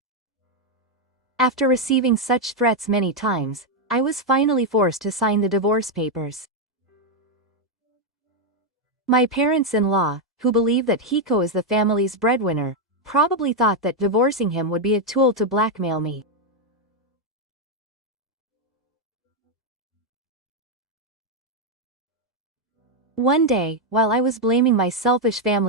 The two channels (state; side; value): normal; both; correlation 0.02